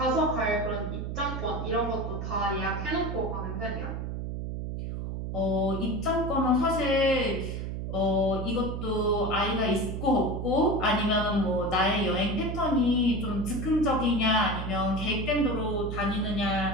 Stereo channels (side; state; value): right; noise; hum, 4 dB below the sound